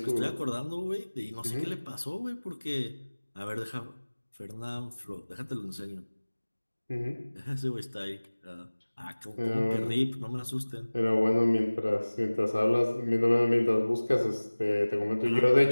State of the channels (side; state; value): both; inverted; correlation -1.00